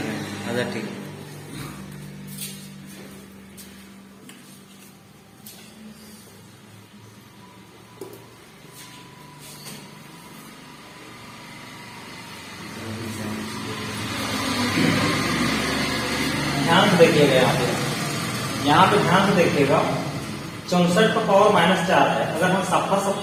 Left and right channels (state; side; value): identical; both; correlation 1.00